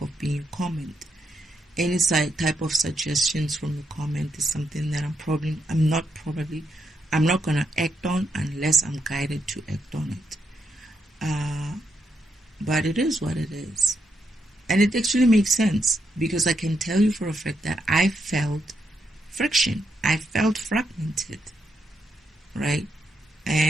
of being a comment. Any type of suggestions from the comment is something that I'm not going to act on unless I'm guided to act on it. But it is what it is. And it actually makes sense, because I can tell you for a fact that I felt friction. I felt fragmented, right?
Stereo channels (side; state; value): both; normal; correlation 0.80